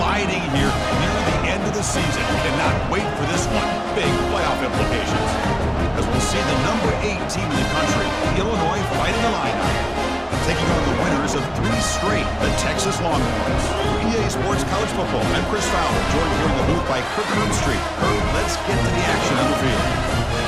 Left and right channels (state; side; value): identical; both; correlation 1.00